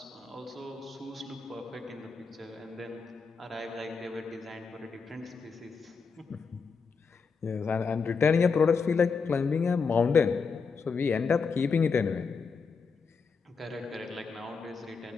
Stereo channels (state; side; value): quieter; right; 5.2 dB